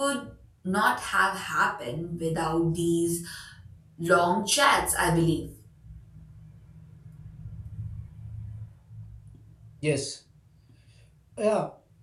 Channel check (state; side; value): identical; both; correlation 1.00